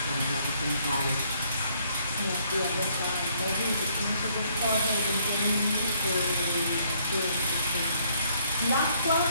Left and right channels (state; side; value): inverted; both; correlation -0.67